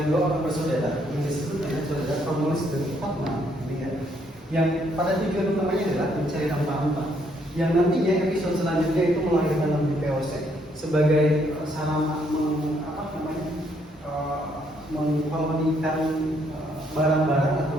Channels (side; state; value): both; normal; correlation 0.71